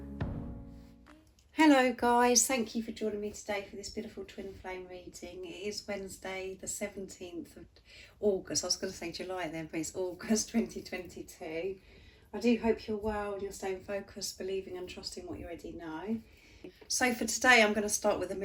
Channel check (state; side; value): identical; both; correlation 1.00